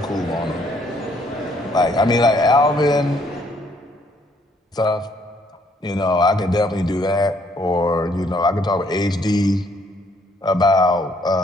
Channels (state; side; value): normal; both; correlation 0.67